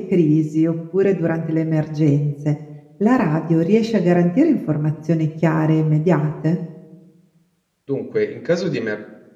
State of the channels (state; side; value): identical; both; correlation 1.00